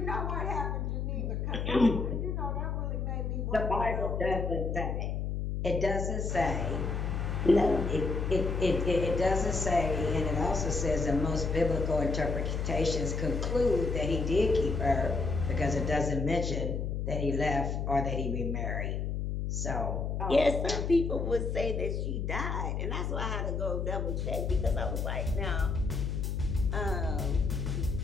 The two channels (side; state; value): left; noise; hum, 1 dB below the sound